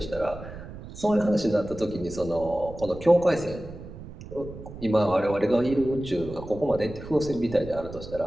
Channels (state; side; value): noise; right; rumble, 13 dB below the sound